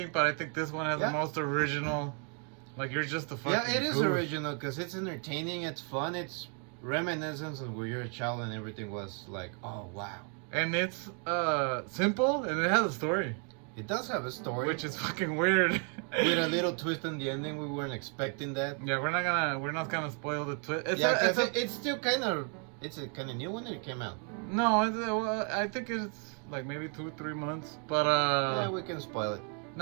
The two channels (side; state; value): left; quieter; 39.6 dB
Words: but I think this one has Yeah. the most original. Like you're just a fucking. Yeah, it is goof. original because it's entertaining. It's fun. It's reminiscence of where you're a child and everything was like, oh wow. And it's simple and it has a story, It does have a story, which is fucking weird. with a little twist in the ending. We weren't expecting that. Yeah, we're not gonna spoil the twist. It's still kind of it's a kind of new one that it came out. No, I think it's like maybe 2-3 months, but Yeah, we can spoil it.